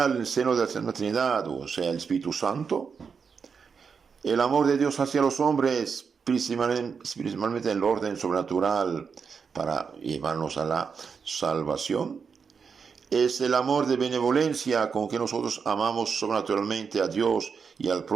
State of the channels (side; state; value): left; quieter; 5.9 dB